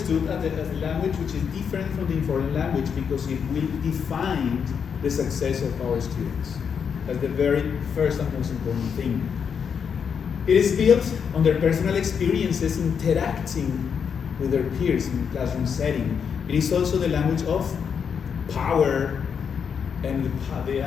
as a language which is different from the informal language because it will define the success of our students. That's the very first and most important thing. It is built on their personal experiences interacting with their peers in the classroom setting. It is also the language of power and the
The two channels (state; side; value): quieter; right; 6.9 dB